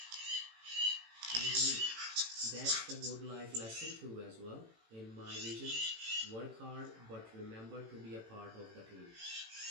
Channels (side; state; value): left; late; 18 ms